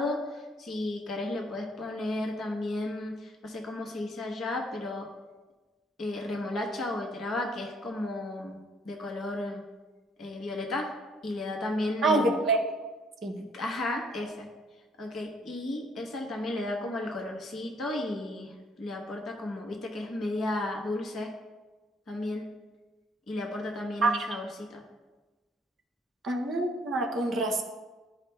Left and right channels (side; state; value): both; normal; correlation 0.65